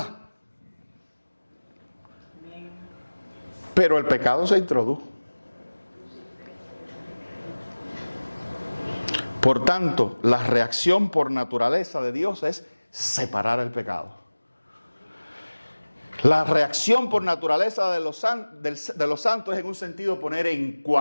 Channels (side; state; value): both; inverted; correlation -1.00